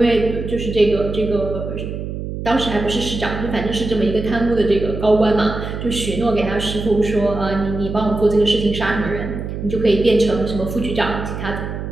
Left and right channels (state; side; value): noise; right; hum, 6 dB below the sound